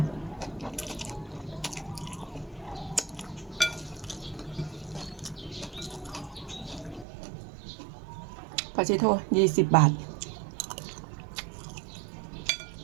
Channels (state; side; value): drops out; left; at 7.1 s